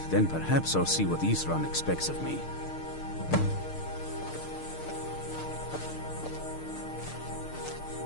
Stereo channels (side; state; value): right; late; 6.6 ms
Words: then perhaps I'll see what Isran expects of me.